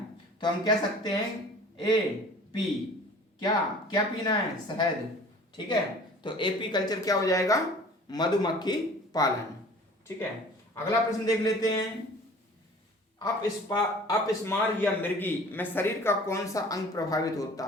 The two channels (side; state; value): both; normal; correlation 0.46